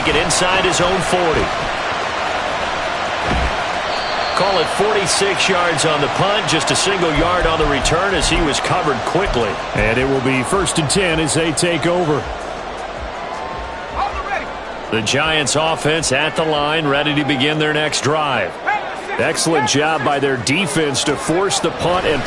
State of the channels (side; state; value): both; identical; correlation 1.00